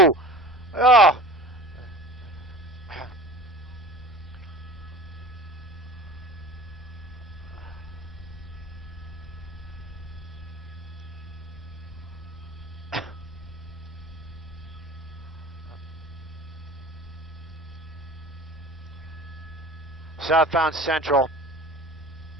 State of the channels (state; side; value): normal; both; correlation 0.39